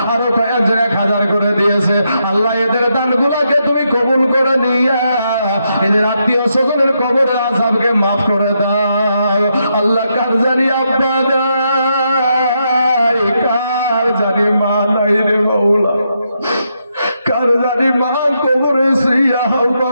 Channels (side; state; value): both; inverted; correlation -0.81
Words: আরো কয়েকজন 1,000 করে দিয়েছে। আল্লাহ এদের দানগুলোকে তুমি কবুল করে নিয়া এদের আত্মীয় স্বজনের কবরের আযাবকে মাফ করে দাও। আল্লাহ কার জানি আব্বা নাই, কার জানি মা নাই রে মাওলা, কার জানি মা কবরে শুইয়া